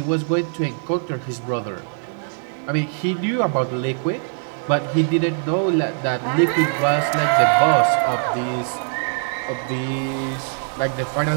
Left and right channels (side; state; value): left; silent; digital silence